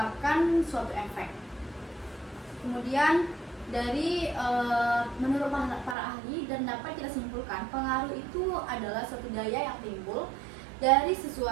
suatu efek. Kemudian dari menurut para ahli dan dapat kita simpulkan, pengaruh itu adalah suatu daya yang timbul dari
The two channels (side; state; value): left; drops out; at 6.0 s